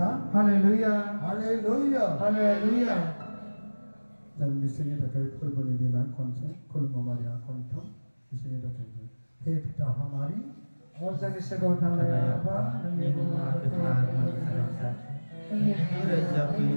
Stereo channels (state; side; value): inverted; both; correlation -1.00